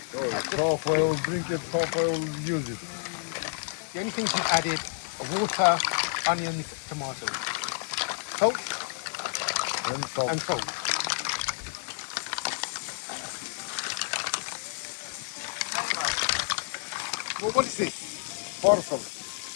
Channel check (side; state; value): right; silent; digital silence